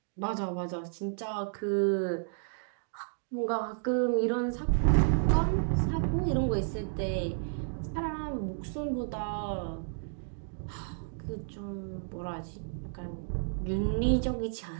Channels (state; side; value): silent; left; digital silence